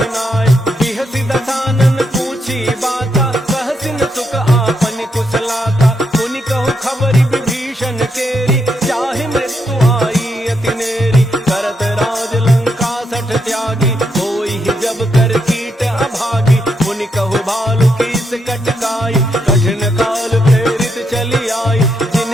नाय बिहसि दसानन पूछी बाता कहसिन सुख आपन कुशलाता पुनि कहु खबरि विभीषण केरी चाहे मृत्यु आई अति नेरी करत राज लंका सठ त्यागी होई ही जब कर कीट अभागी पुनि कहु भालु कीस कटकाई कठिन काल प्रेरित चली आई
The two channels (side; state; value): both; normal; correlation 0.80